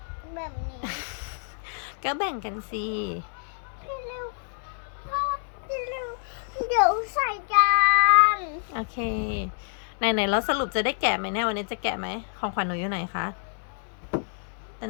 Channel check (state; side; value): silent; right; 58 dB below the other